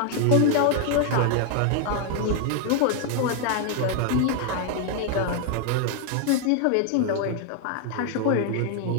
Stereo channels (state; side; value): different; both; correlation 0.00